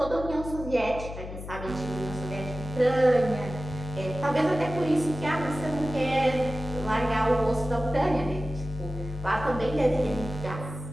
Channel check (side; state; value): left; noise; hum, 10 dB below the sound